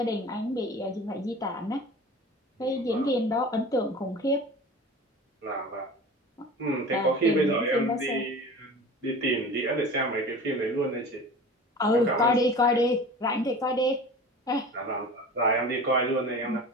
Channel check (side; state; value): both; normal; correlation 0.37